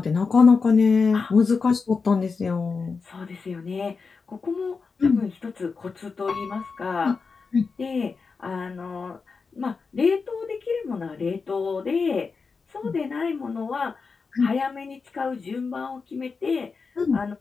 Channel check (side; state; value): right; quieter; 4.8 dB